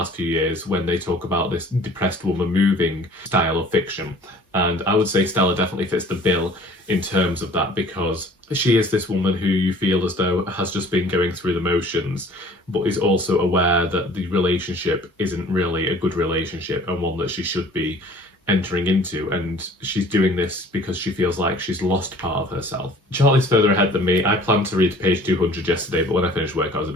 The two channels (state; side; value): normal; both; correlation 0.50